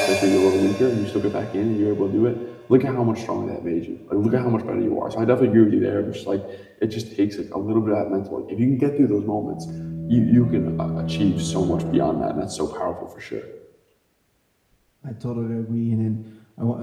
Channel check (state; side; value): identical; both; correlation 1.00